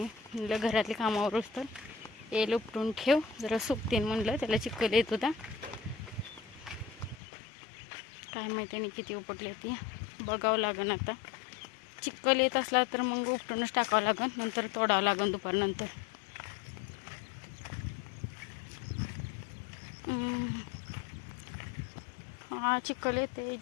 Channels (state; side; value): drops out; right; at 7.2 s